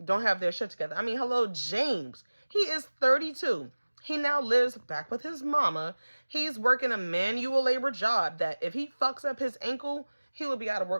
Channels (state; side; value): inverted; both; correlation -1.00